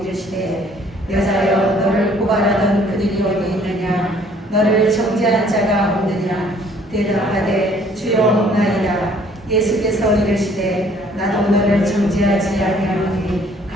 이르시되 여자여 너를 고발하던 그들이 어디 있느냐. 너를 정죄한 자가 없느냐. 대답하되 주여 없나이다. 예수께서 이르시되 나도 너를 정죄하지 아니하노니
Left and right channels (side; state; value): both; normal; correlation 0.59